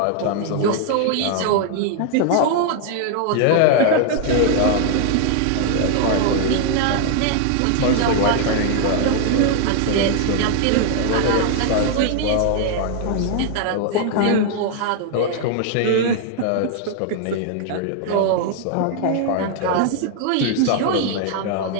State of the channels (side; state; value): both; different; correlation 0.00